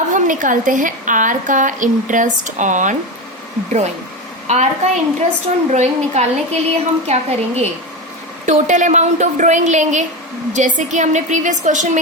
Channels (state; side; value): normal; both; correlation 0.18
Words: हम निकालते हैं आर का इंटरेस्ट ऑन ड्राइंग। आर का इंटरेस्ट ऑन ड्राइंग निकालने के लिए हम क्या करेंगे, टोटल अमाउंट ऑफ ड्राइंग लेंगे, जैसे कि हमने प्रीवियस क्वेश्चन